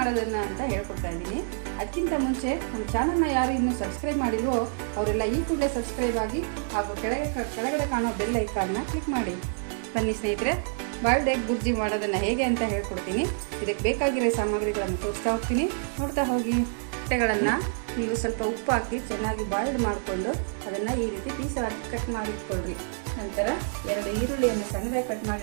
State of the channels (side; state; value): left; silent; digital silence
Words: ಅಂತ ಹೇಳ್ಕೊಡ್ತಾ ಇದ್ದೀನಿ. ಅದಕ್ಕಿಂತ ಮುಂಚೆ ನಮ್ಮ ಚಾನಲ್ನ ಯಾರು ಇನ್ನೂ ಸಬ್ಸ್ಕ್ರೈಬ್ ಮಾಡಿಲ್ವೋ ಅವರೆಲ್ಲ ಈ ಕೂಡಲೇ ಸಬ್ಸ್ಕ್ರೈಬ್ ಆಗಿ ಹಾಗೂ ಕೆಳಗಡೆ ಕಾಣೋ ಬೆಲ್ ಐಕಾನ್ನ ಕ್ಲಿಕ್ ಮಾಡಿ. ಬನ್ನಿ ಸ್ನೇಹಿತರೆ, ಬಾಯ್ಲ್ಡ್ ಎಗ್ ಬುರ್ಜಿ ಮಾಡೋದನ್ನು ಹೇಗೆ ಅಂತ ಹೇಳ್ಕೊಡ್ತೀನಿ. ಇದಕ್ಕೆ ಬೇಕಾಗಿರೋ ಸಾಮಗ್ರಿಗಳನ್ನು ತೋರಿಸ್ತಾ ಹೋಗ್ತೀನಿ, ನೋಡ್ತಾ ಹೋಗಿ. ಮೊಟ್ಟೆಗಳನ್ನು ನೀವು ಸ್ವಲ್ಪ ಉಪ್ಪು ಹಾಕಿ ಚೆನ್ನಾಗಿ ಬಾಯ್ಲ್ಡ್ ಮಾಡಿಕೊಂಡು ಅದನ್ನು ಈ ರೀತಿ ಪೀಸಾಗಿ ಕಟ್ ಮಾಡಿಟ್ಕೊಳ್ರಿ. ನಂತರ 2 ಈರುಳ್ಳಿಯನ್ನು ಸಣ್ಣದಾಗಿ ಕಟ್